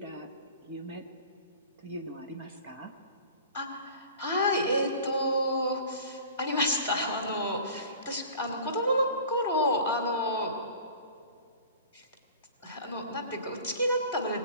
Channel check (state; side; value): inverted; both; correlation -0.42